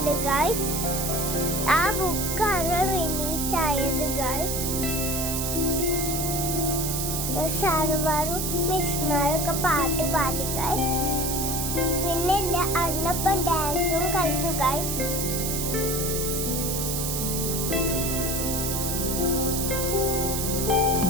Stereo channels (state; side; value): noise; right; hiss, 2 dB below the sound